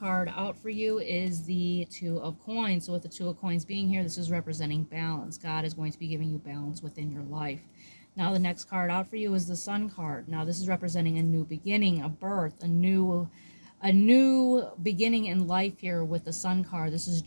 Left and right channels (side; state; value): both; inverted; correlation -1.00